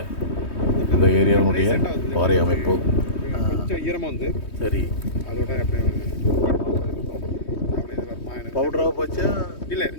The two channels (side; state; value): right; late; 3.2 ms